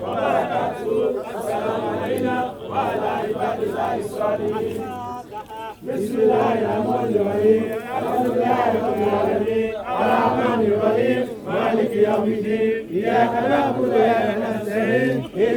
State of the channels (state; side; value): identical; both; correlation 1.00